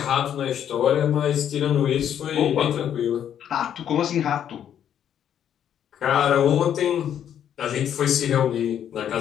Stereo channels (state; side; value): quieter; right; 9.6 dB